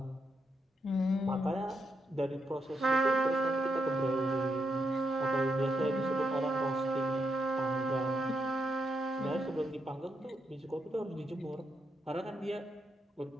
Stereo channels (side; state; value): both; normal; correlation 0.81